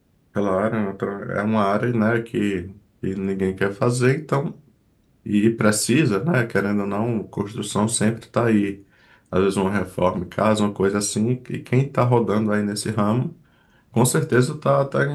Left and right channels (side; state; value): both; identical; correlation 1.00